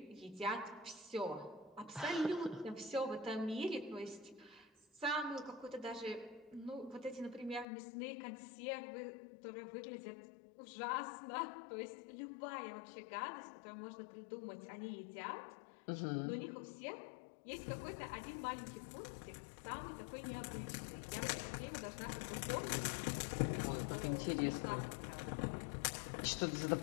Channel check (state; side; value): drops out; right; at 7.7 s